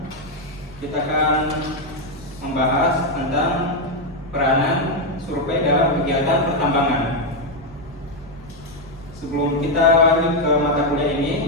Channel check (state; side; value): normal; both; correlation 0.03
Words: kita akan membahas tentang peranan survei dalam kegiatan pertambangan. Sebelum kita lanjut ke mata kuliah